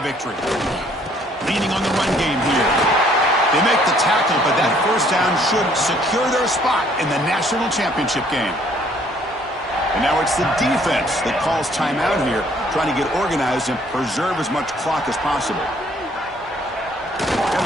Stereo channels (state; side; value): normal; both; correlation 0.62